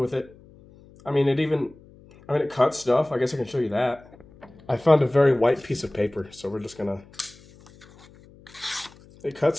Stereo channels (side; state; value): left; noise; hum, 24 dB below the sound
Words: it. It cuts stuff. I guess I can show you that. I found a very white piece of paper, so we're just gonna... It cuts